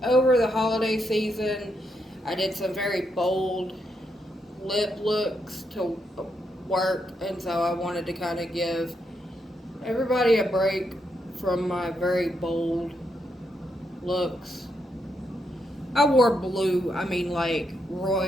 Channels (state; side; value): normal; both; correlation 0.80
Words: over the holiday season, I did some very bold lip looks to work, and so I wanted to kind of give everybody a break from my very bold looks. I wore blue, I mean like